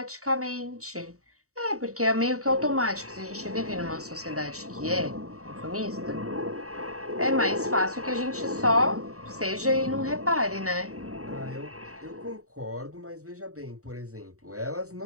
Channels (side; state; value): left; late; 0.65 ms